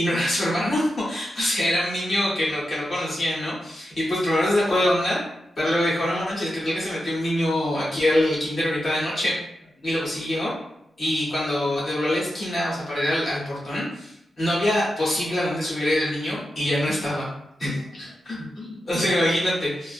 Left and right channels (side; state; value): both; normal; correlation 0.89